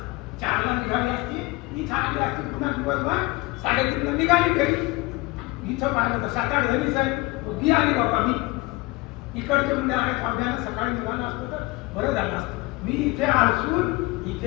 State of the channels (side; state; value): right; quieter; 22.9 dB